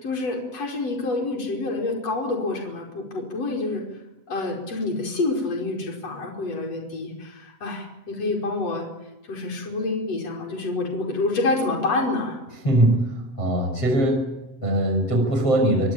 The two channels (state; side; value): late; right; 7.9 ms